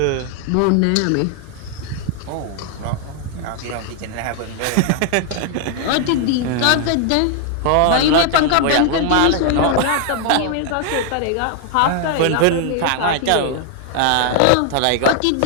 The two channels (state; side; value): different; both; correlation 0.00